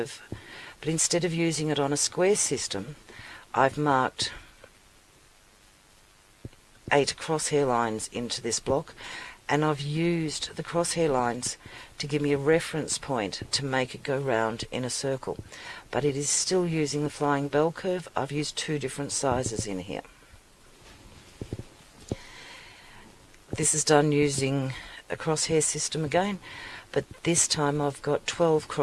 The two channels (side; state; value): both; identical; correlation 1.00